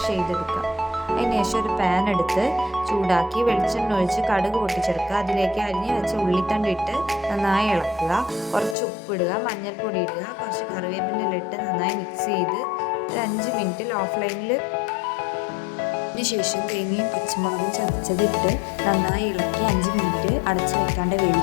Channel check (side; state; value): right; drops out; at 8.8 s